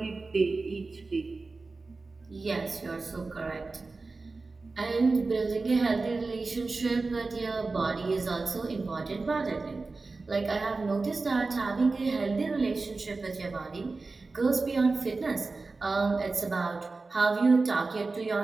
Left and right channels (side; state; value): left; quieter; 3.8 dB